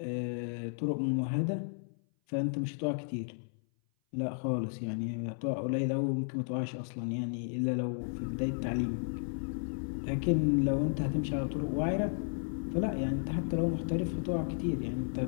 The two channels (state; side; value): silent; right; 56 dB below the other